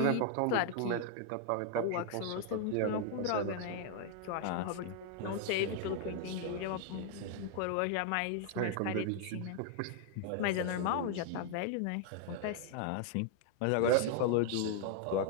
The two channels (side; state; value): both; different; correlation 0.00